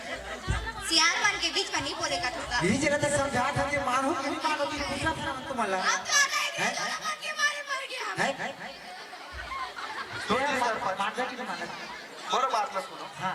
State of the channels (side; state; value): both; identical; correlation 1.00